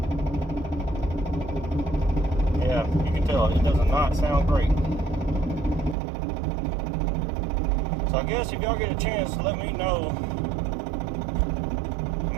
Yeah, you can tell it does not sound great. So I guess if y'all get a chance, let me know. I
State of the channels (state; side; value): drops out; left; at 6.0 s